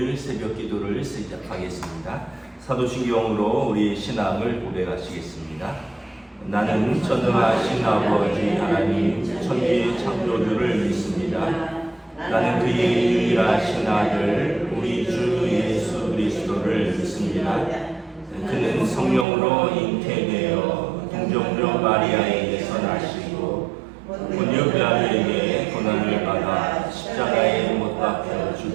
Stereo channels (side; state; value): left; drops out; at 19.2 s